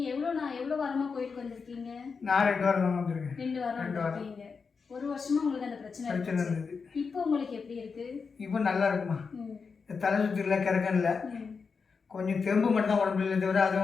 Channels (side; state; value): right; quieter; 5.3 dB